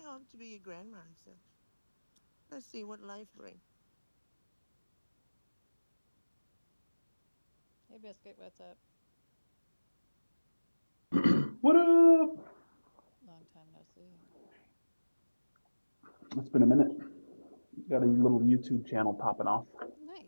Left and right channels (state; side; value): inverted; both; correlation -1.00